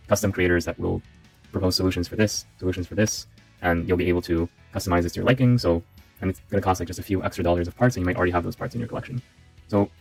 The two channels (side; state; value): both; identical; correlation 1.00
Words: custom creators that will propose solutions for this, and you'll be able to customize this to your liking. So, and it's going to cost like just a few extra dollars of parts, and you might already have those parts in your collection. So